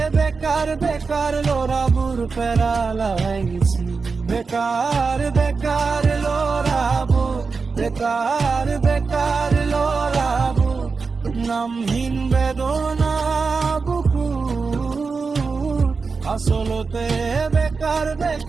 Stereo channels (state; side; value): quieter; left; 4.7 dB